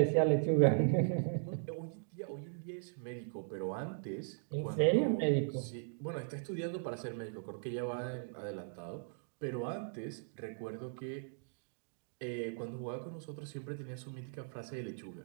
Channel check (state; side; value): silent; left; digital silence